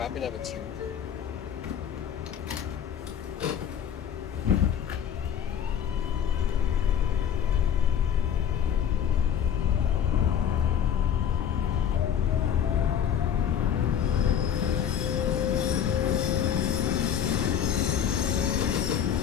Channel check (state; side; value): quieter; right; 8.8 dB